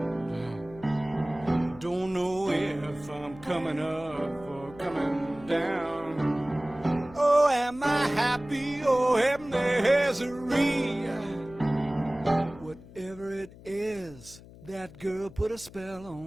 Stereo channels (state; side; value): noise; left; hum, 19 dB below the sound